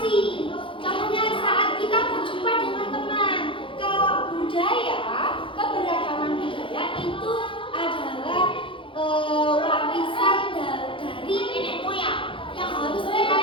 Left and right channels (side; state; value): right; late; 0.25 ms